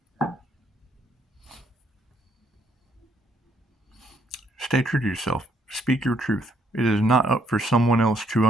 Stay true to yourself. Speak your truth. It is not up for someone else to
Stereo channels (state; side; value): normal; both; correlation 0.70